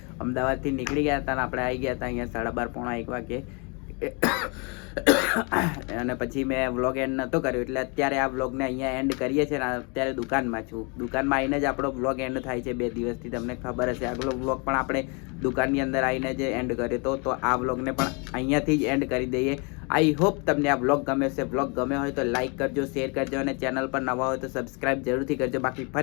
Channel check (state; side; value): quieter; right; 32.7 dB